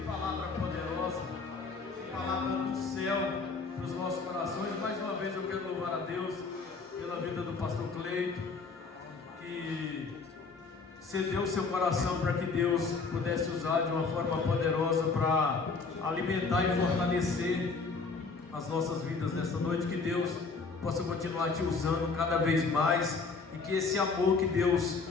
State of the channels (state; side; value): quieter; right; 4.4 dB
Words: palavra poderosa, que palavra do céu para os nossos corações. Mais uma vez eu quero louvar a Deus pela vida do pastor Cleito, que cedeu seu coração para que Deus pudesse usar de uma forma poderosa para alimentar e fortalecer as nossas vidas nessa noite. Que Deus possa continuar te usando cada vez mais e que esse amor que Deus